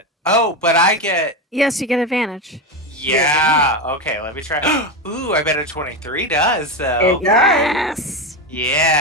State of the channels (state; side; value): normal; both; correlation 0.15